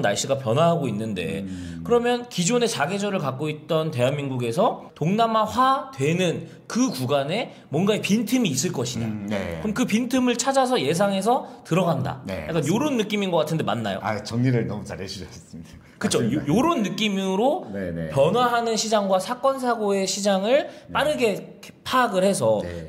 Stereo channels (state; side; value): identical; both; correlation 1.00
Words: 날씨가 변화하고 있는데 그러면 기존의 사계절을 갖고 있던 대한민국에서 동남아화 되는 그 구간에 뭔가의 빈틈이 있을 것이냐. 네. 그럼 그 빈틈을 찾아서 예상해서 들어간다. 네, 약간 이런 느낌인 것 같은데 맞나요? 정리를 너무 잘 해주셨습니다. 그렇죠. 요런 느낌으로 네네. 변화하는 시장과 사건 사고의 시장을 빠르게 파악을 해서 네.